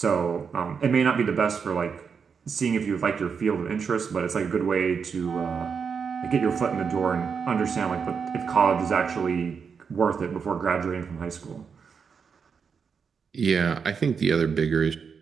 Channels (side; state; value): left; quieter; 6.1 dB